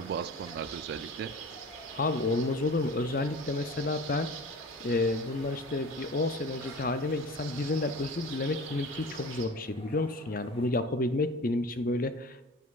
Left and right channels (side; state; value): both; normal; correlation 0.38